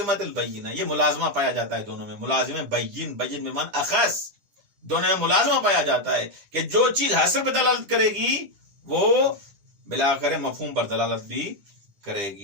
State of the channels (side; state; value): left; late; 10 ms